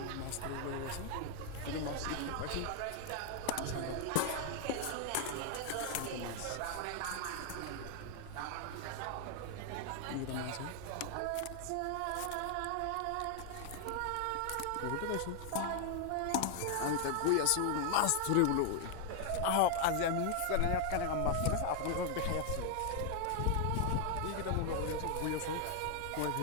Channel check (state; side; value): different; both; correlation 0.00